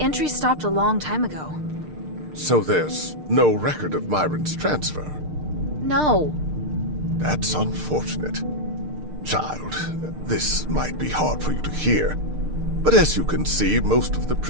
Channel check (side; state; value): left; late; 6.6 ms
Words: entry stopped a long time ago. So there's no record of Myron's transfer? No. That's unfortunate. Child, this might be hard for you to hear, but as you can see, most of the